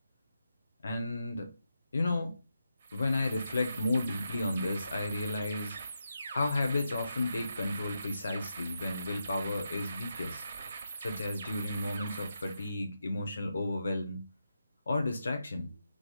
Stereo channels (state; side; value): inverted; both; correlation -0.85